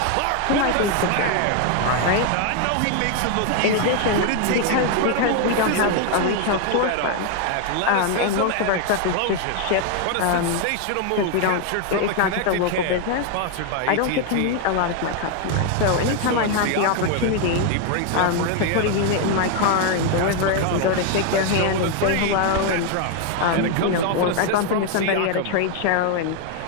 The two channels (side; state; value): both; different; correlation 0.00